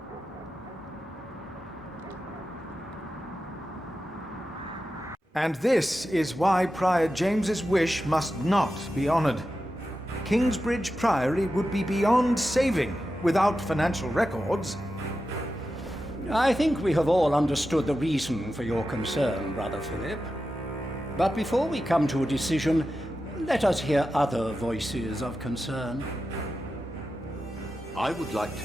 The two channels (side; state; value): both; normal; correlation 0.91